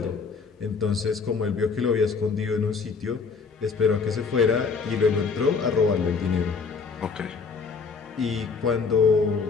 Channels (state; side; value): quieter; right; 5.1 dB